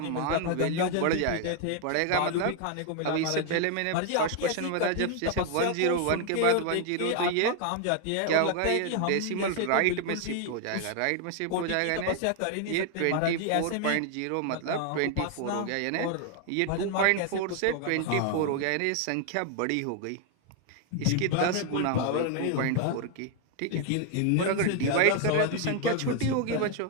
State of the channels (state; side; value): different; both; correlation 0.00